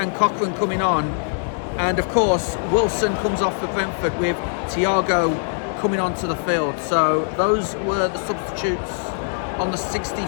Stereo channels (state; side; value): silent; right; digital silence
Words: Cochrane coming on. And of course, Wilson comes off for Brentford, with Thiago coming onto the field. So those were the substitutes on the